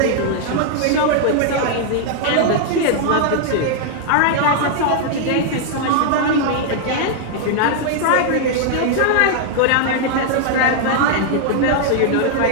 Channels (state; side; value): different; both; correlation -0.01